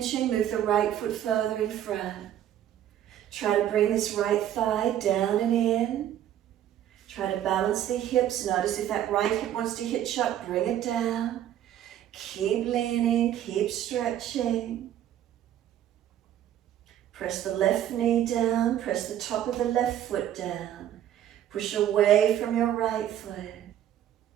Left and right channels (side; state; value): left; quieter; 11.3 dB